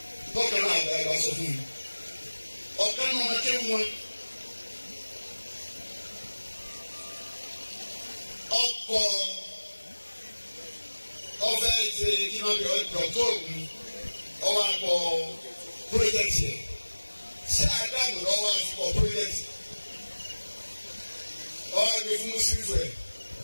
Bọ́kàn náà àgbà ìbá sọ fún mi. Ọ̀kan náà wọn ké wọn. Ọkọ̀ ọ̀fẹ́ ṣe kí wọ́n bí ọ̀dọ̀ ògùn ọwọ́ akọ pírọ́jẹ́tì ẹ̀. Ṣé àdánù lọ́wọ́ akọ pírọ́jẹ́tì? Ọwọ́ àgbẹ̀ fún Mùsùlùmí rẹ̀.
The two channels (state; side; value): inverted; both; correlation -1.00